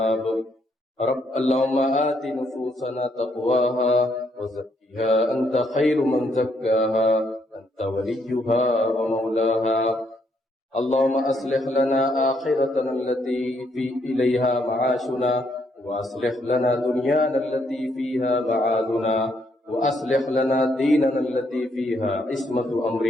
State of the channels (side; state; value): both; normal; correlation 0.73